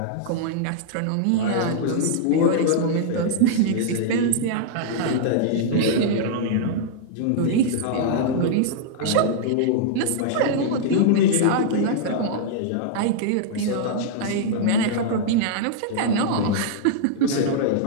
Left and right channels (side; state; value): both; different; correlation -0.02